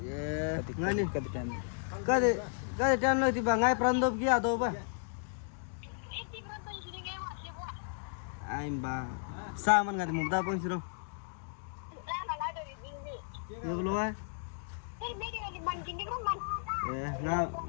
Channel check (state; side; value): silent; right; digital silence